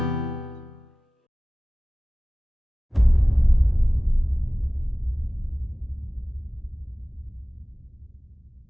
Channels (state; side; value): normal; both; correlation 0.97